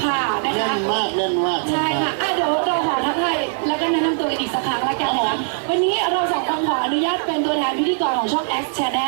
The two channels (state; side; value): silent; left; 55 dB below the other